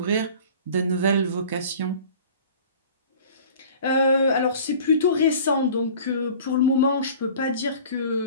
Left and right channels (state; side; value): inverted; both; correlation -0.45